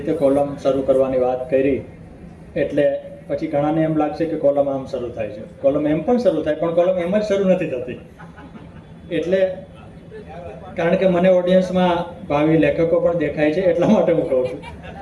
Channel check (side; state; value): both; identical; correlation 1.00